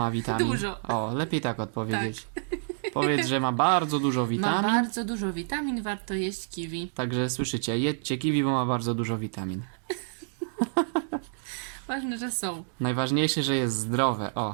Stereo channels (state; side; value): silent; left; digital silence